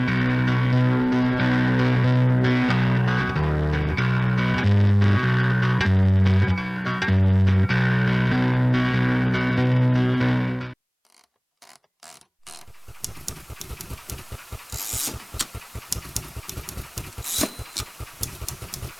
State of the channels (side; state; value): both; identical; correlation 1.00